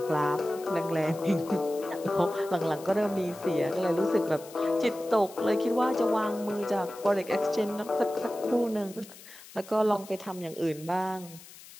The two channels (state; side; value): noise; left; hiss, 19 dB below the sound